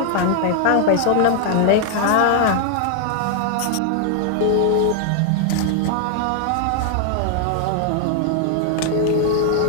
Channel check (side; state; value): both; different; correlation 0.00